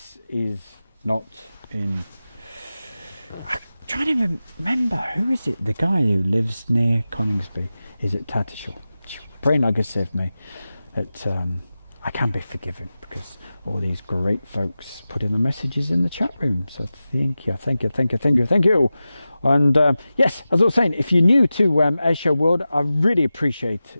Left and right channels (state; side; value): inverted; both; correlation -0.94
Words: is not in... I'm trying to remember. Who is it? The guy who lives near Coningsby. Is it Tatishall? Pray not God save me. That I can be forgiven because all these great folks put in the messages in the chat room. So thank you. And yes, as I was saying, if you're new to Airshow World, I really